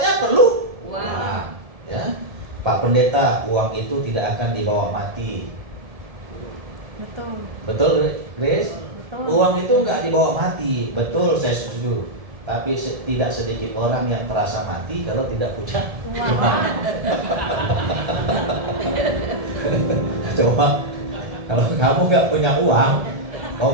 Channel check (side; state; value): left; late; 1.7 ms